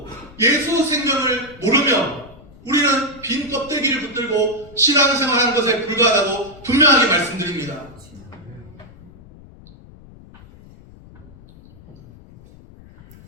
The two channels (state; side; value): noise; left; rumble, 22 dB below the sound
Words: 예수 생명을 모르면 우리는 빈 껍데기를 붙들고 신앙생활하는 것에 불과하다고 분명하게 말씀드립니다.